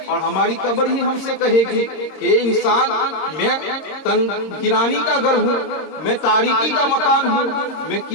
اور ہماری قبر ہی ہم سے کہے گی کہ انسان، میں تنگ گرانی کا گھر ہوں، میں تاریکی کا مکان ہوں، میں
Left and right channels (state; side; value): late; right; 26 ms